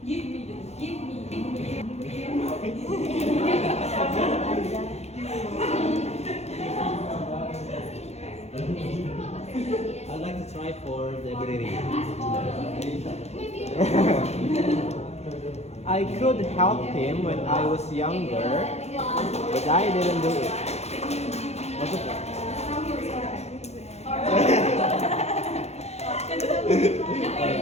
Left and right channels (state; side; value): late; right; 0.31 ms